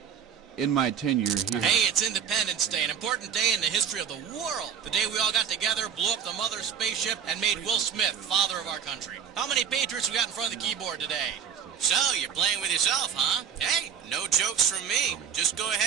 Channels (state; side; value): quieter; left; 7.9 dB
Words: In my tenure here. Hey, it's Independence Day, an important day in the history of the world. The day we all got together, blew up the mother spaceship, and made Will Smith father of our country. How many Patriots we got in front of the keyboard today? So, you're playing with yourself, huh? Hey, no jokes from me. Just go